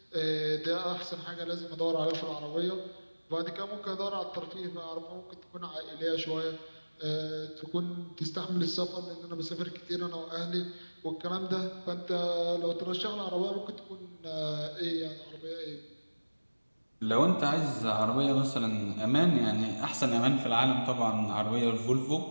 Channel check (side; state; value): both; inverted; correlation -1.00